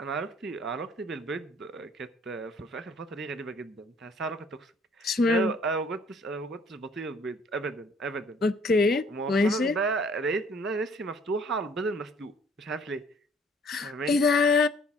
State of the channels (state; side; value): normal; both; correlation 0.58